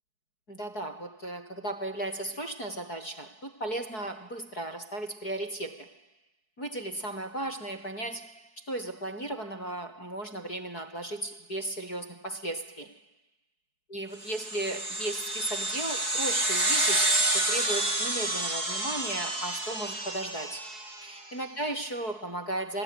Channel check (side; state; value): right; late; 4.7 ms